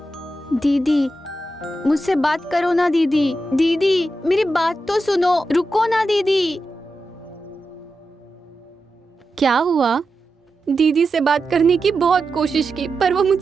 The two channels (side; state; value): both; normal; correlation 0.89